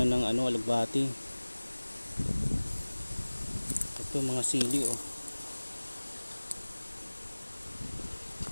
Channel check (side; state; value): both; inverted; correlation -1.00